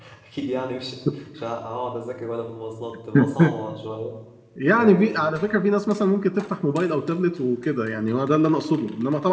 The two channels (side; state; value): both; identical; correlation 1.00